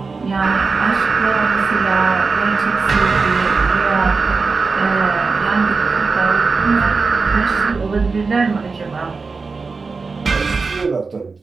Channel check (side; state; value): left; quieter; 4.4 dB